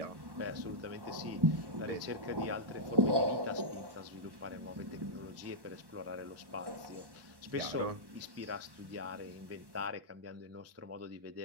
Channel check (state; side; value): late; left; 1.1 ms